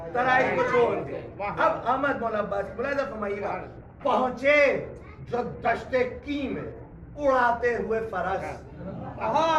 तराई को छोड़ के। अब अहमद मौला अब्बास मुलाहिज़ा फरमाइएगा। पहुंचे जो दश्ते की में उड़ाते हुए फरस,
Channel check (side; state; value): both; identical; correlation 1.00